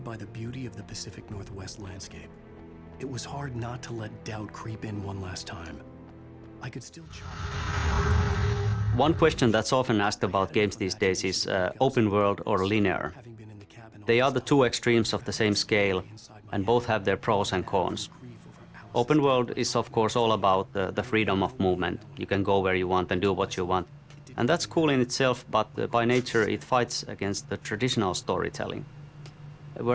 by the beauty of the Pacific Northwest landscape. It was hard not to let doubt creep in one last time. I could still One question that's often asked about games these days is open world or linear. They are the two extremes of the same scale, and both have their pros and cons. Open world is of course all about the freedom of movement. You can go where you want and do what you want. And that's cool in itself, but by nature it fights against the traditional storytelling.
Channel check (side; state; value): both; identical; correlation 1.00